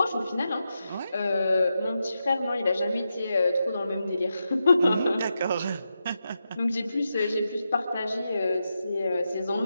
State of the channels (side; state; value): both; inverted; correlation -0.87